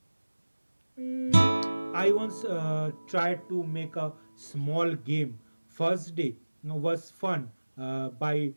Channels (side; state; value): both; inverted; correlation -1.00